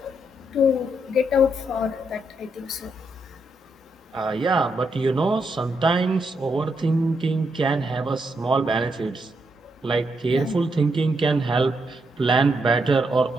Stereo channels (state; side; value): normal; both; correlation 0.79